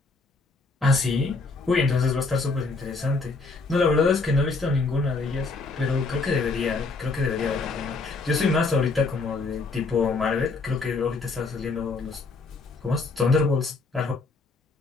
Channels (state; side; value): quieter; right; 3.8 dB